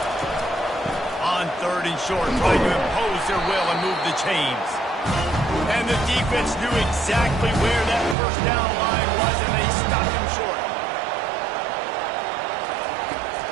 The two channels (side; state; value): left; drops out; at 8.2 s